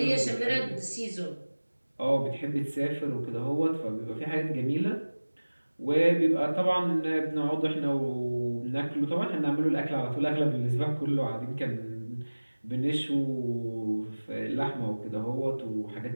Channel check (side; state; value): both; inverted; correlation -1.00